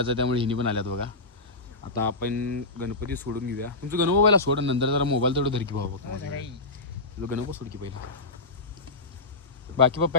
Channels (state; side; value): quieter; right; 3.1 dB